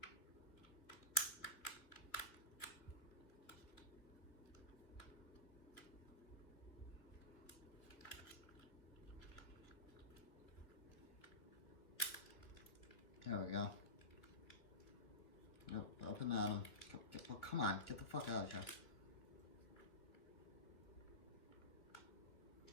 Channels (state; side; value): late; right; 2.6 ms